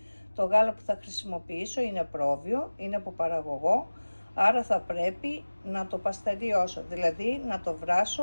Το γάλα που θα χρησιμοποιήσω είναι πρόβιο, είναι από παραγωγό, άρα θα πρέπει να το παστεριώσω, δηλαδή να το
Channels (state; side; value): inverted; both; correlation -1.00